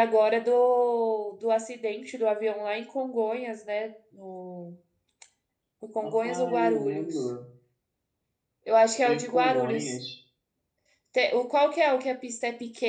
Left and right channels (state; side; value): identical; both; correlation 1.00